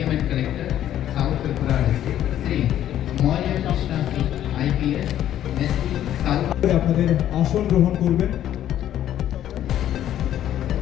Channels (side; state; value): right; quieter; 11.5 dB